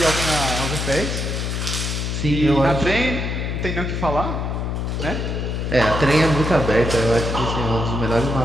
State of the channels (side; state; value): left; noise; hum, 2 dB below the sound